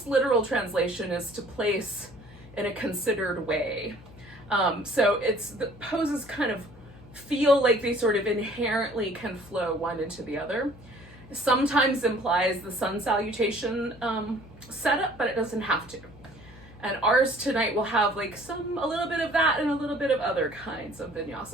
literal translation is to place in a considered way. So the poses kind of feel like they sort of inherently can flow one into the other. Sometimes implies the sun salutation setup, but it doesn't have to. And ours tonight will have like a little bit of that and a little bit of other kinds of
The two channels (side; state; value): left; noise; hum, 21 dB below the sound